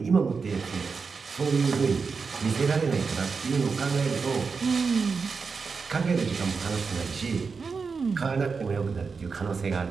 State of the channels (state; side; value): quieter; left; 5.0 dB